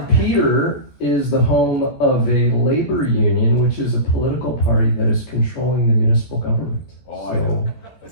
Peter is the home of a labor union, which is a political party that is controlling the municipal government. Oh, I know.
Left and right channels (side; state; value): right; late; 14 ms